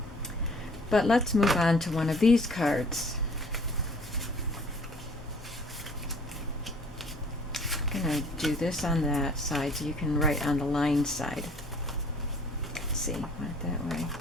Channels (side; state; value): both; normal; correlation 0.54